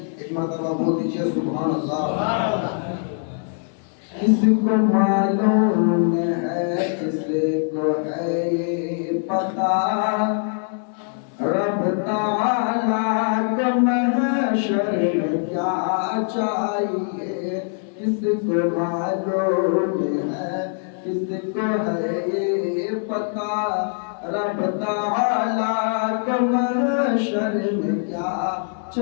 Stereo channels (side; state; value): right; silent; 64 dB below the other